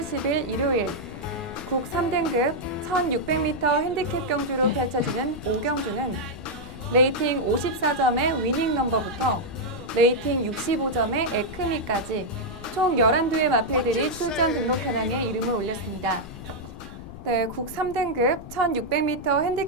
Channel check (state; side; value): noise; left; rumble, 15 dB below the sound